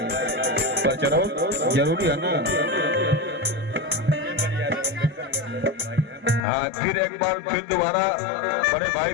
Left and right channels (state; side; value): drops out; right; at 6.4 s